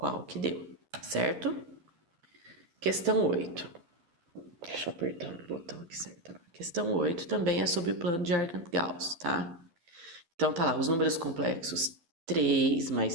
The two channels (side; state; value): left; late; 12 ms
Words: que deu, certo? Questão 8. Deixa eu apertar o botão aqui certo. Questão 8 também é sobre o plano de Argand-Gauss, tá? Então tá lá, os números complexos 3